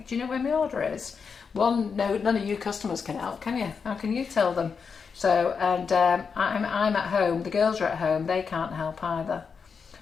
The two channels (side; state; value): right; quieter; 5.8 dB